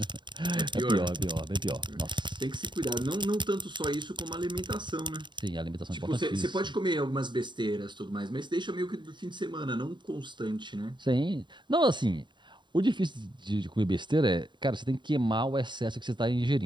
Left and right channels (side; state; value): left; late; 0.22 ms